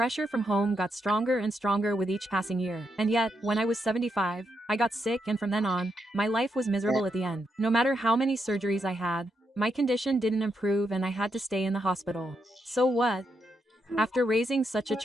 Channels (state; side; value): normal; both; correlation 0.81